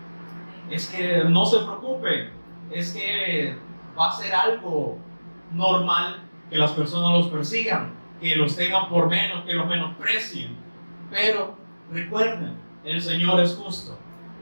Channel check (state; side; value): inverted; both; correlation -1.00